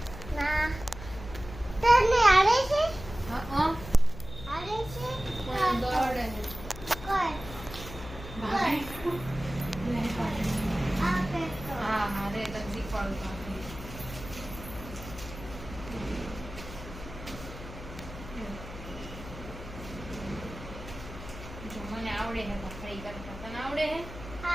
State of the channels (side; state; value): left; noise; hum, 12 dB below the sound